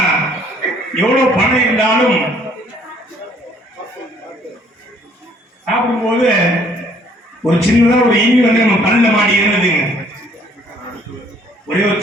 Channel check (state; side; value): normal; both; correlation 0.61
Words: எவ்வளவு பணம் இருந்தாலும் சாப்பிடும்போது ஒரு சின்னதா ஒரு ஈமி வந்து நம்ம பல்ல மாடி இருந்ததுங்க. ஒரே ஒரு